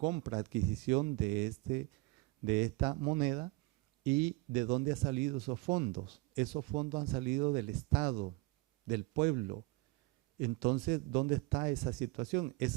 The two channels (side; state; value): left; quieter; 21.1 dB